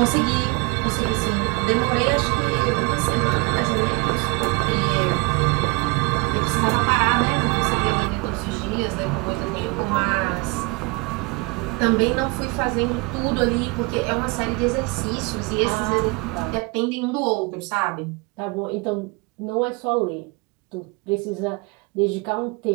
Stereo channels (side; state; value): left; quieter; 27.2 dB